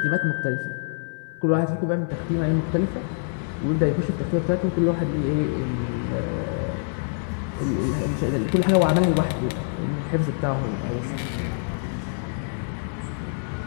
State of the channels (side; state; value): right; silent; digital silence